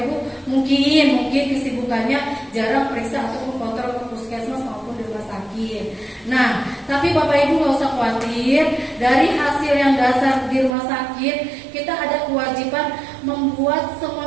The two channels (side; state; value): left; drops out; at 10.8 s